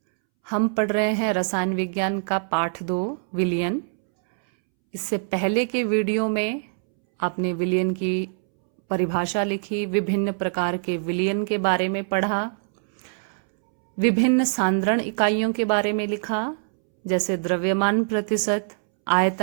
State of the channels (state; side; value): silent; left; 63 dB below the other